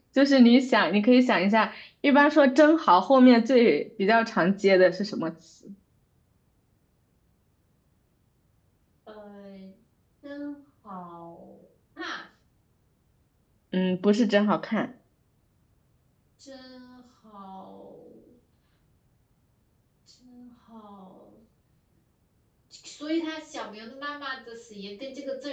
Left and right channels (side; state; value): both; identical; correlation 1.00